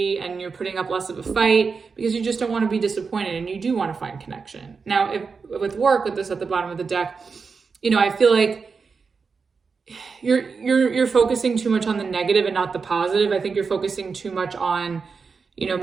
and you're putting up less of a fight, because you just don't want to be disappointed and you do want to find connection. Now, if with work, with this at the bottom of the deck, you know, I feel like you're focusing too much on the negative and not the positive. I think you're focusing too much on, you know,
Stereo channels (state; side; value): quieter; left; 5.1 dB